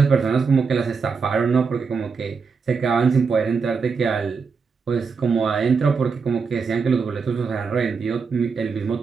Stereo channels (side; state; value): left; quieter; 5.3 dB